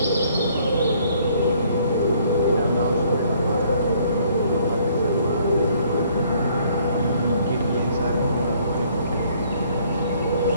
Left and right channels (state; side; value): inverted; both; correlation -0.63